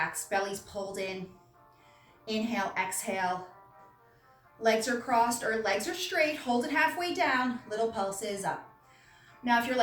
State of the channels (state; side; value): identical; both; correlation 1.00